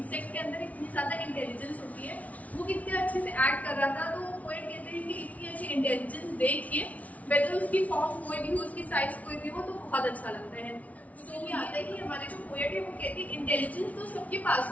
के अंदर इतनी ज्यादा इंटेलिजेंस होती है, वो कितने अच्छे से एक्ट कर रहा था। तो पोएट कहते हैं कि इतनी अच्छी इंटेलिजेंस देखिए वेदर उसकी फॉर्म कोई भी हो, उसकी साइज कोई भी हो, तो बहुत अच्छा लगता है। तो ये आता है कि हमारे जो पोएट है वो कहते हैं इंटेलिजेंस तो सबके पास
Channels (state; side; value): late; right; 0.069 ms